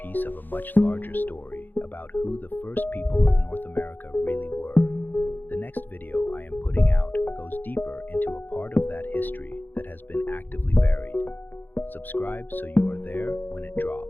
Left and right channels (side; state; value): right; late; 0.088 ms